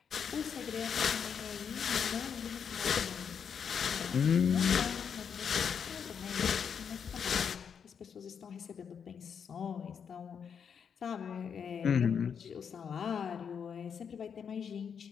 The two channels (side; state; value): right; quieter; 7.1 dB